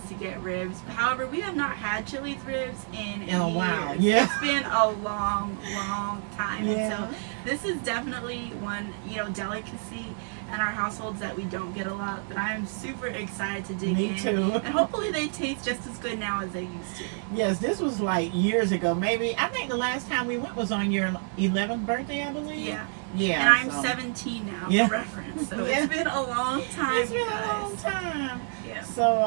to get ribs. However, we have not had Chili's ribs in a years. while. Yeah. It's been a long, long time. Yeah. And so this is definitely one, delicacy in our households that we don't get a lot, but I am super excited to dig in. Me too. And hopefully they taste just as good now as they used to. Yes, this was like years ago. Maybe, I think the last time we went was on your 11th birthday, I believe. Yeah. Yeah. And I'm 17 now, Yeah. for reference. So Yeah. it's been a long time, It's been guys. a long time. Yeah.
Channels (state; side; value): silent; left; 57 dB below the other